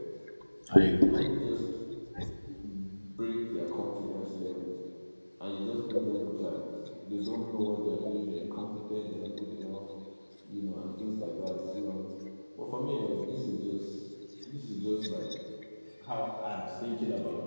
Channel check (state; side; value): inverted; both; correlation -1.00